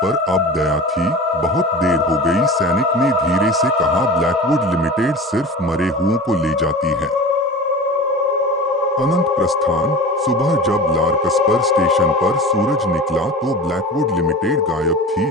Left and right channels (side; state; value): both; normal; correlation 0.34